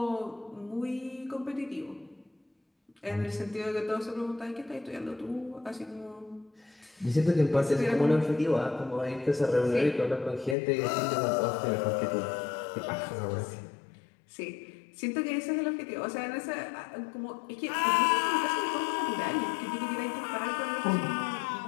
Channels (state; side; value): drops out; right; at 10.6 s